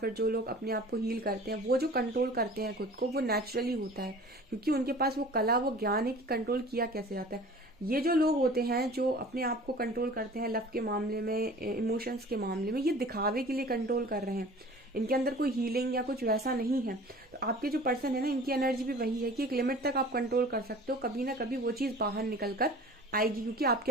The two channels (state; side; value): normal; both; correlation 0.44